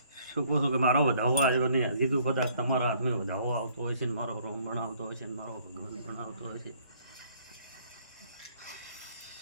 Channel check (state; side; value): inverted; both; correlation -0.62